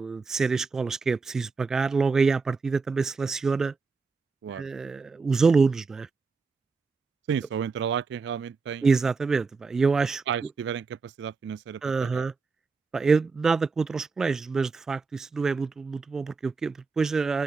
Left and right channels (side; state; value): left; quieter; 4.5 dB